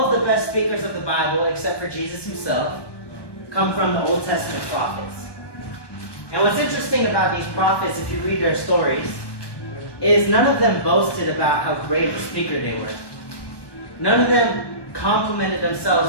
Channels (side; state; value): right; late; 1.2 ms